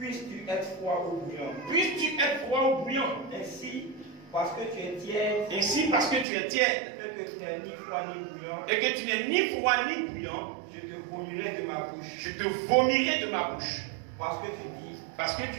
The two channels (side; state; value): left; drops out; at 6.2 s